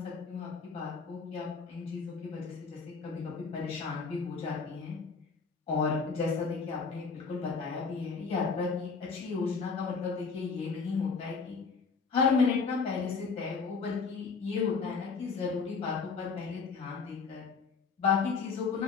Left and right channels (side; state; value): right; quieter; 5.0 dB